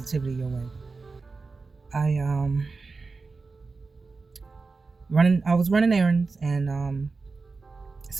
your way. I I was running errands, and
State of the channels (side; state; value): left; quieter; 4.1 dB